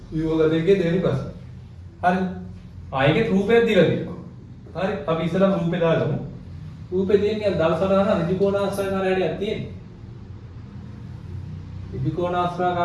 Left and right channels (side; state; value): both; identical; correlation 1.00